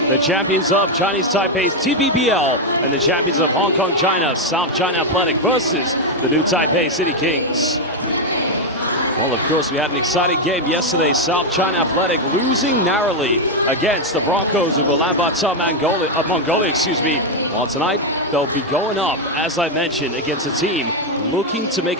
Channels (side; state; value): both; normal; correlation 0.03